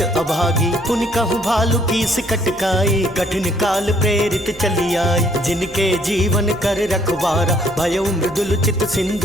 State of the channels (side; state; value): both; normal; correlation 0.64